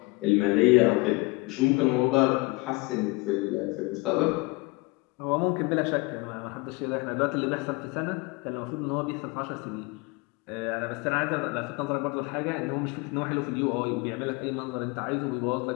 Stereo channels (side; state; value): right; quieter; 25.3 dB